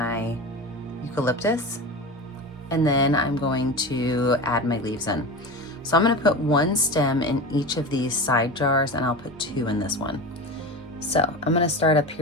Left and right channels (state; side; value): normal; both; correlation 0.27